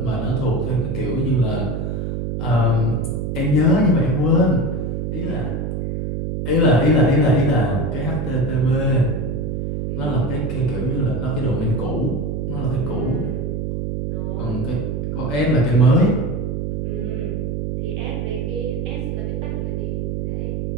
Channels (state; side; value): noise; right; hum, 2 dB below the sound